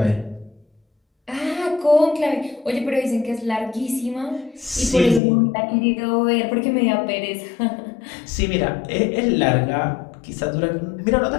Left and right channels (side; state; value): right; drops out; at 5.2 s